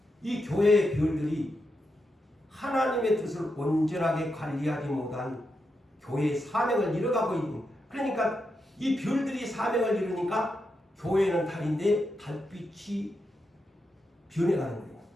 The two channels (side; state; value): both; normal; correlation 0.85